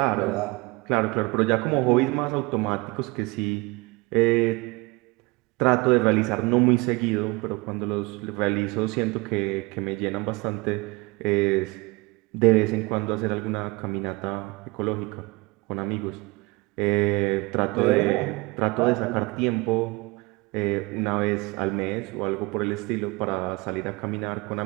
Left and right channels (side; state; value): left; quieter; 24.9 dB